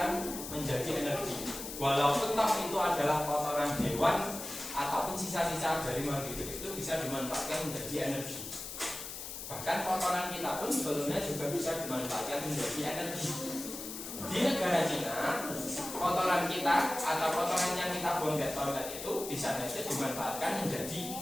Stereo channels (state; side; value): noise; left; hiss, 8 dB below the sound